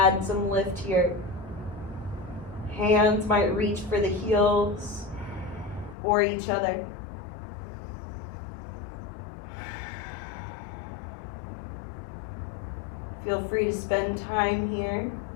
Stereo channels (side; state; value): right; drops out; at 6.0 s